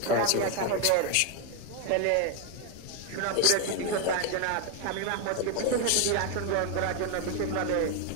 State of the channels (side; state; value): both; different; correlation 0.01